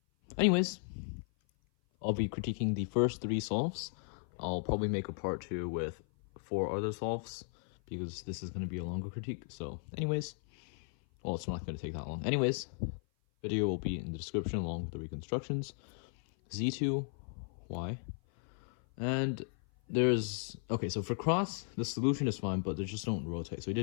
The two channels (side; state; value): right; silent; 54 dB below the other